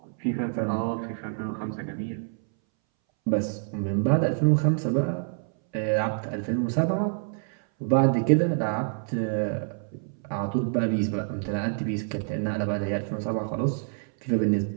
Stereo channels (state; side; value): silent; left; 60 dB below the other